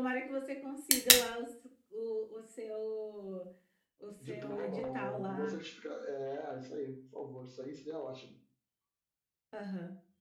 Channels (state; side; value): identical; both; correlation 1.00